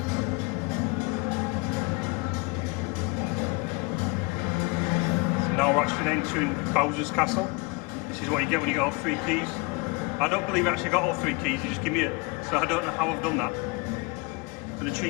Now we're actually entering Bowser's Castle. This is what you get when you get all 3 keys. I don't believe I actually got all 3 keys, you just give me it. So I don't know how I've done that. But the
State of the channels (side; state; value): right; quieter; 28.2 dB